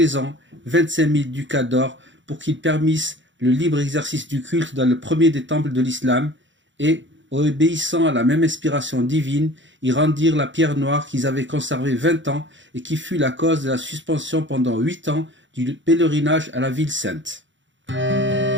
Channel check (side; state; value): left; late; 0.54 ms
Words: ans 25 000 ducats d'or pour qu'ils permissent le libre exercice du culte dans le premier des temples de l'islam et, obéissant à la même inspiration divine, ils rendirent la pierre noire qu'ils avaient conservée 20 ans et qui fut la cause de la suspension pendant 8 ans du pèlerinage à la ville sainte.